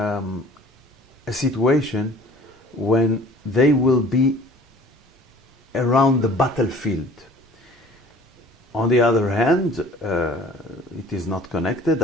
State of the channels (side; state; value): both; normal; correlation 0.49